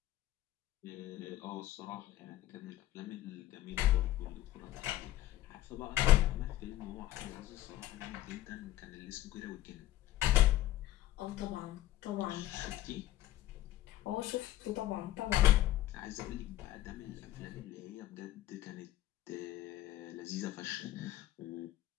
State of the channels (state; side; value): quieter; right; 14.5 dB